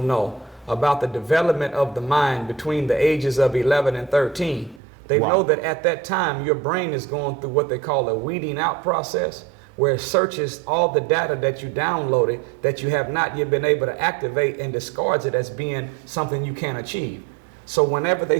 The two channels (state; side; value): drops out; left; at 4.8 s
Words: about the development of the mind between the ages of 11 and 13. They know that at that time, your brain is going through what they call a weeding out process, where it searches all the data that you downloaded that you have not yet been able to activate and discards it as being something you can't achieve. So whenever they